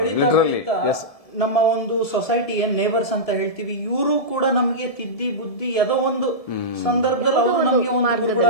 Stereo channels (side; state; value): right; late; 1.7 ms